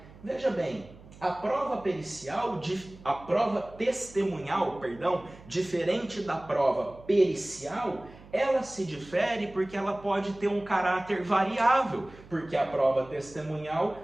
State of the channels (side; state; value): right; noise; hum, 21 dB below the sound